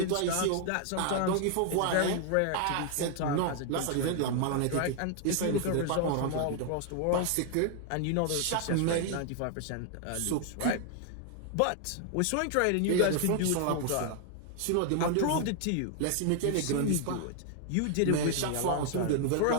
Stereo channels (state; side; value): different; both; correlation 0.00